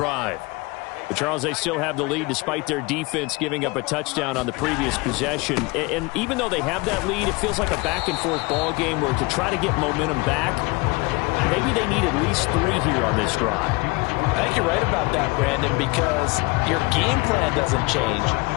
But Charles, they still have the lead despite their defense giving up a touchdown on the previous possession. And even though they have that lead, it feels like a back-and-forth ball game where to try to get momentum back, maybe they need at least 3 here on this drive. I think you're right about that, Brandon, because your game plan doesn't change.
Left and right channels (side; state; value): right; quieter; 25.5 dB